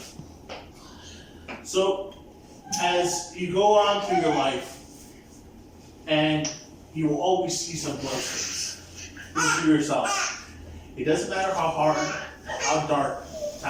So, as you go on through your life, and you will always see some glow sticks. Think to yourself, it doesn't matter how hard or how dark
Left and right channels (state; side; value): identical; both; correlation 1.00